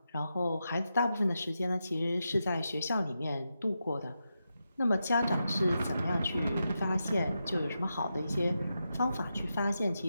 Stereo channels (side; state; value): both; inverted; correlation -0.88